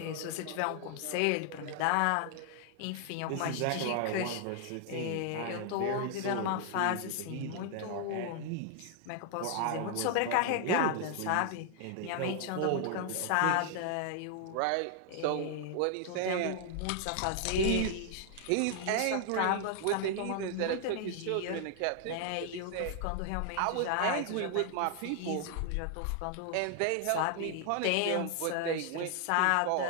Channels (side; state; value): both; different; correlation 0.00